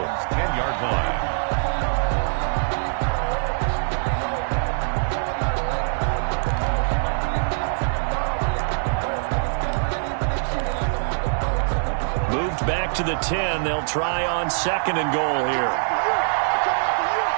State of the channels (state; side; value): silent; left; digital silence